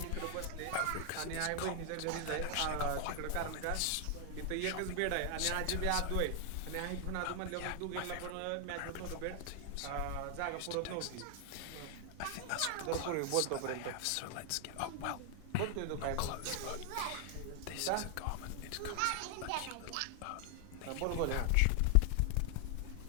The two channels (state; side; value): different; both; correlation 0.00